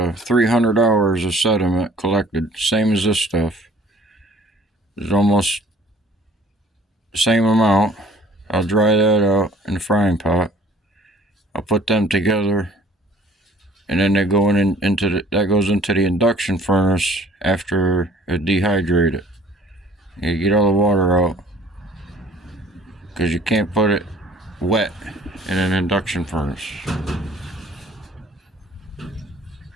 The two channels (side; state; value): both; normal; correlation 0.53